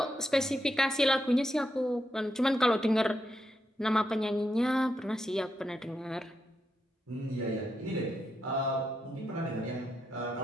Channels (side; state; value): both; normal; correlation 0.83